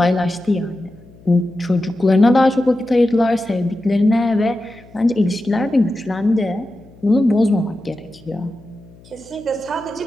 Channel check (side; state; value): left; noise; hum, 24 dB below the sound